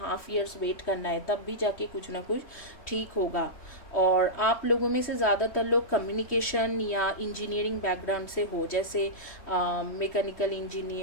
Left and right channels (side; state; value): right; late; 3.1 ms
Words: years wait करना है, तब भी जाके कुछ ना कुछ ठीक होगा। और आप लोगों में से ज़्यादातर लोग कम्युनिकेशन या इंजीनियरिंग बैकग्राउंड से हो, जैसे mechanical